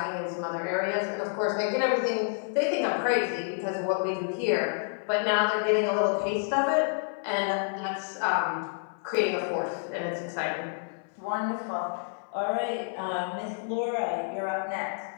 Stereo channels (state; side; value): silent; right; 59 dB below the other